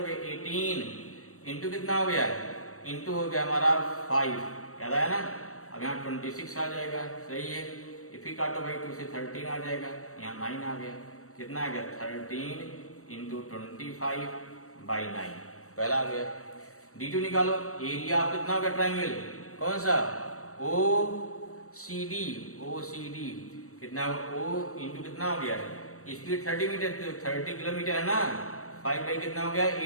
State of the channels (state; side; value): late; right; 0.65 ms